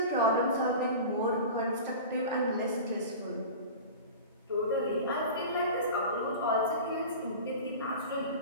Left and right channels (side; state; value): both; inverted; correlation -0.33